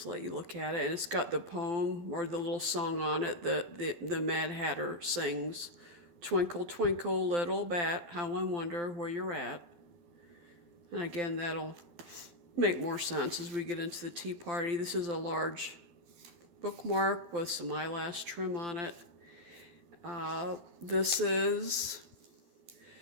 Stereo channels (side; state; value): left; late; 12 ms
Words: let you look at it. And it's got the poem or the little song on it that the Mad Hatter sings. Twinkle, twinkle, little bat, how I wonder where you're at. And again, that'll make more sense as we get into the tea party. This is a large bookmark with some eyelash trim on it. This is